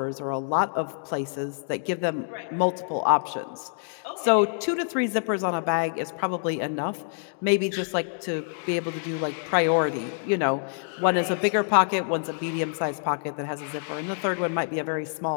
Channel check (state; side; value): silent; right; digital silence